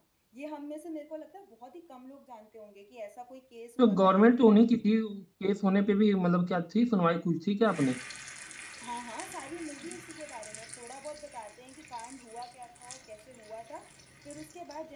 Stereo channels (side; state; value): both; identical; correlation 1.00